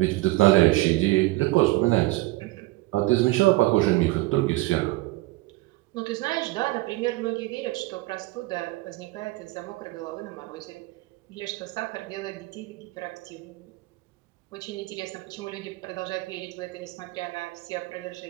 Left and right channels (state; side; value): quieter; left; 20.0 dB